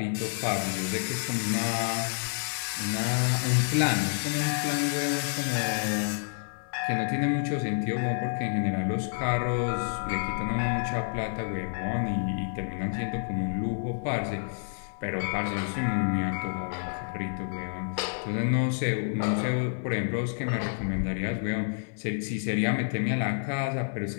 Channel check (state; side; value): silent; right; digital silence